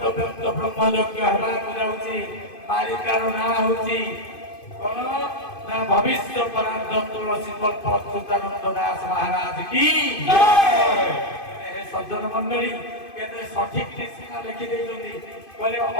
व्यक्त ब्रह्मयज्ञ हेबाकु जाउछि। मालिकार नाम होछि कोन ना भविष्य परार्थ तुलसी कल्प अच्युतानंद दास महाराज की जय। सज्जन मंडली केते सठिक सीमा लिखि देइछन्ति बोले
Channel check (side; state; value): right; late; 2.5 ms